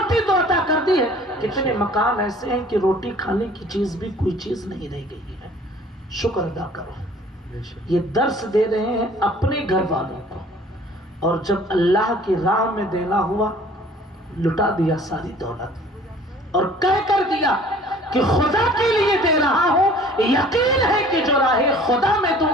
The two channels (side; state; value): both; normal; correlation 0.51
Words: تو عطا کر دی ہے۔ کتنے مکان ایسے ہیں کہ روٹی کھانے کی چیز بھی کوئی چیز نہیں رہ گئی ہے، شکر ادا کرو۔ یہ درس دے رہے ہیں اپنے گھر والوں کو، اور جب اللہ کی راہ میں دینا ہوا لٹا دیا ساری دولت، اور کہہ کر دیا کہ خدا کے لیے دے رہا ہوں، یقین ہے کہ جو راہ خدا میں